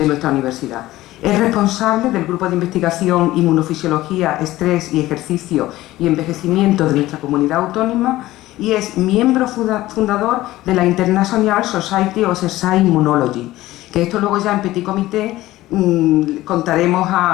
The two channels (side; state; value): right; quieter; 16.5 dB